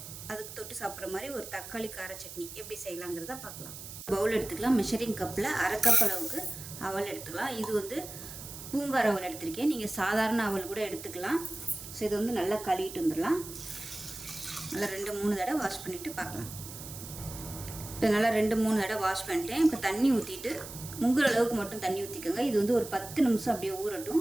அதுக்கு தொட்டு சாப்பிட்ற மாதிரி ஒரு தக்காளி கார சட்னி எப்படி செய்யலாங்கிறத பார்க்கலாம். பவுல் எடுத்துக்கலாம். மெஷரிங் கப்பில் அரை கப் அளவுக்கு அவல் எடுத்துக்கலாம். இது வந்து பூங்கார் அவல் எடுத்திருக்கேன். நீங்கள் சாதாரண அவல் கூட எடுத்துக்கலாம். ஸோ இதை வந்து நல்லா கழுவிட்டு வந்துடலாம். நல்லா 2-3 தடவை வாஷ் பண்ணிவிட்டு பார்க்கலாம். இப்போ நல்லா 2-3 தடவை வாஷ் பண்ணிட்டேன். இப்போ தண்ணி ஊற்றிட்டு முங்குற அளவுக்கு மட்டும் தண்ணி ஊற்றிக்கோங்க. இது வந்து ஒரு 10 நிமிஷம் அப்படியே ஊறட்டும்.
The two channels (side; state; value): right; noise; hiss, 12 dB below the sound